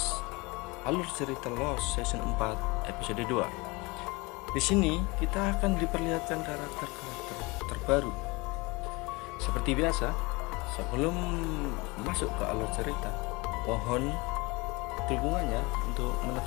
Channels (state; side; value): quieter; right; 25.2 dB